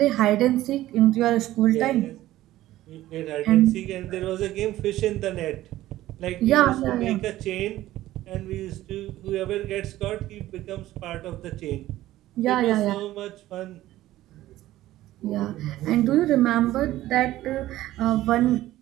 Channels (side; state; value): left; quieter; 15.1 dB